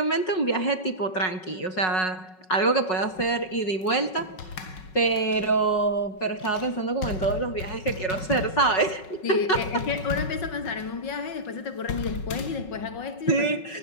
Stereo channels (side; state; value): right; late; 5.4 ms